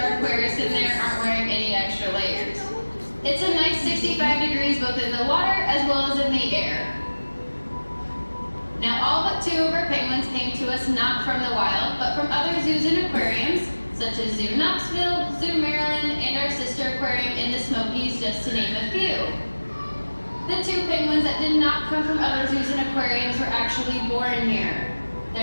aquarists in there aren't wearing any extra layers. It's a nice 65 degrees both in the water as well as in the air. Now all but 2 of our penguins came to us not from the wild, but from other zoos and aquariums, such as Zoo Knoxville, Zoo Maryland, and our sister aquarium in the Smokies, just to name a few. The 2 penguins that did not come from other zoos and aquariums were actually born here.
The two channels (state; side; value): inverted; both; correlation -1.00